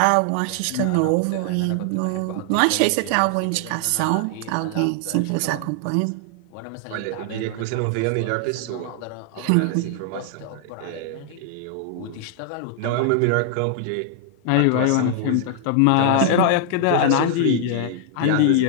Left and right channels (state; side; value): different; both; correlation 0.00